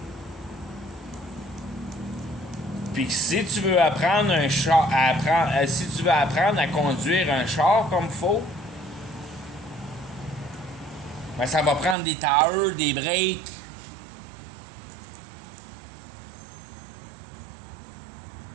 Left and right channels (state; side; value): drops out; left; at 12.0 s